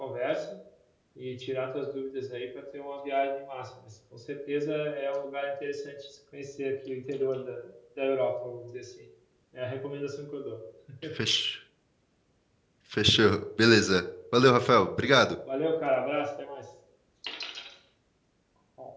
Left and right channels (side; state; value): both; identical; correlation 1.00